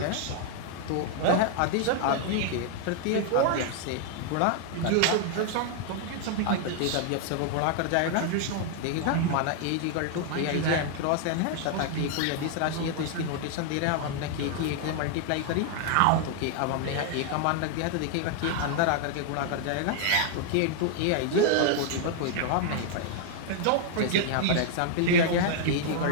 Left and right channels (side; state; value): both; different; correlation 0.00